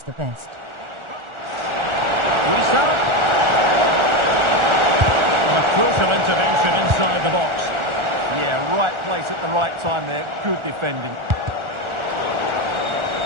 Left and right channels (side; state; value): left; late; 1.4 ms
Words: the best. Wisa. A crucial intervention inside the box. Yeah, right place at the right time there. Good defending.